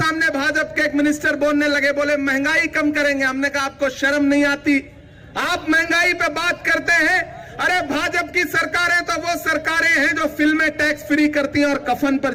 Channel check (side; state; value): both; identical; correlation 1.00